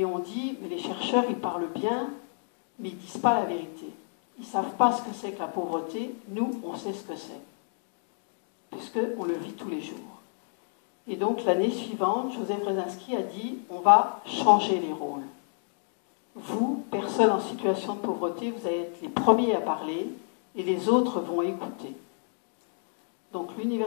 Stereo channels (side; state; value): right; silent; 58 dB below the other